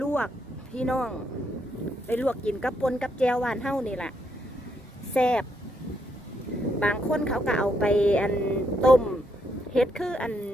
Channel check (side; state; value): both; normal; correlation 0.76